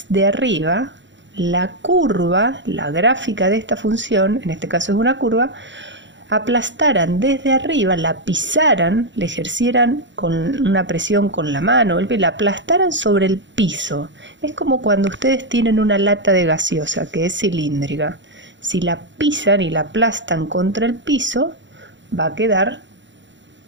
arriba la curva, la gráfica de esta función, en este caso es una curva, aplastaran desde arriba, la pisaran, le ejercieran con una presión con la mano, la aplastaran sobre el piso. Es como cuando ustedes tienen una lata de gaseosa que es cilíndrica. Si la pisan y la aplastan contra el piso, va a quedar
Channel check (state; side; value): late; left; 0.54 ms